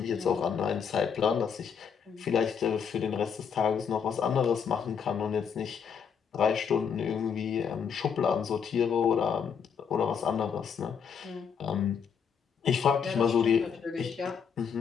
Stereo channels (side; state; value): right; quieter; 6.9 dB